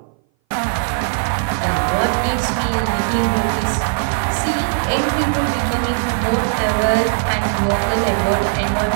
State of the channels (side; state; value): left; silent; 59 dB below the other